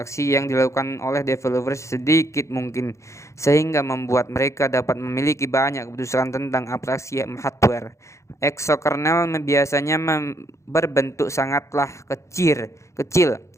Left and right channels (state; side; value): late; right; 0.14 ms